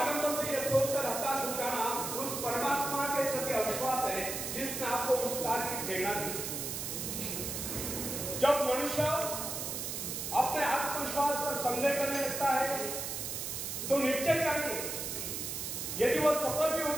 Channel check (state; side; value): noise; right; hiss, 4 dB below the sound